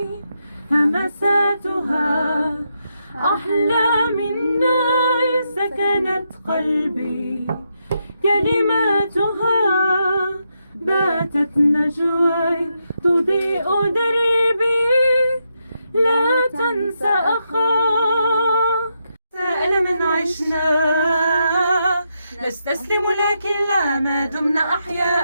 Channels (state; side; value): inverted; both; correlation -0.82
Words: همساتها أحلى من نار سكنت قلبي، كلماتها باتت نجواي تضيء دربي. لا تنسى أخاك، سأل من عشنا نستسلم لكن لا، ما دمنا